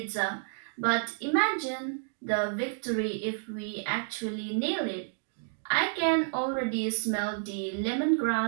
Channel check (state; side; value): silent; left; digital silence